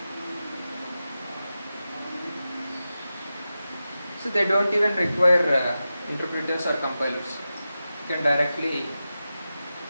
So they don't even require interpreters or compilers. You can directly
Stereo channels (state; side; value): inverted; both; correlation -0.93